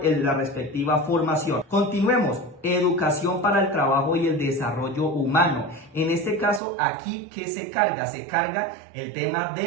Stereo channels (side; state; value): left; drops out; at 6.6 s